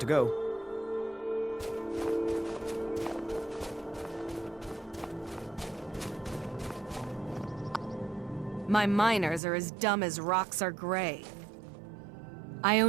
to go. My miners are as dumb as rocks are gray. I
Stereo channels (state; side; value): drops out; left; at 9.4 s